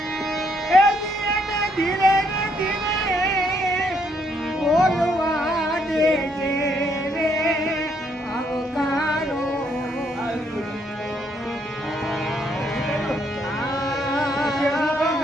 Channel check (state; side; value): normal; both; correlation 0.72